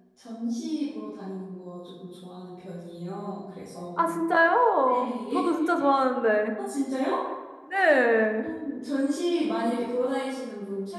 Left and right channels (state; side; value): identical; both; correlation 1.00